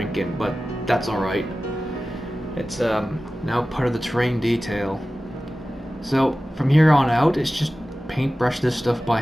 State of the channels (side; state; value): both; normal; correlation 0.96